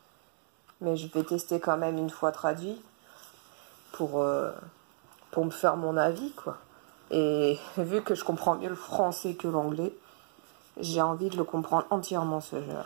Mais je vais tester quand même une fois traduit pour me faire mon avis, quoi. Et vu que je comprends mieux le français que l'anglais, j'ai envie de le comprendre entièrement, ce jeu.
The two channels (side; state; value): left; silent; 56 dB below the other